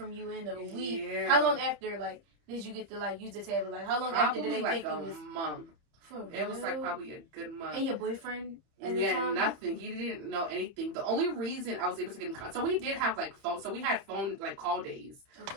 you in a week. Yeah. How long after, like, did you get to, like, use the tablet? Like, how long after did they think you was... a month. It was like probably a good month. And your boyfriend? Nothing. He didn't know anything. The only reason I was able to get in contact, so we did have like phone. So we had phone like call days,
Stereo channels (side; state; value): left; late; 30 ms